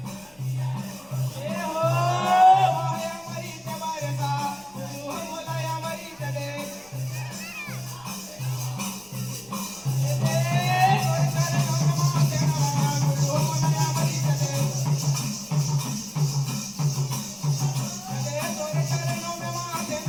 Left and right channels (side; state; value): left; noise; rumble, 29 dB below the sound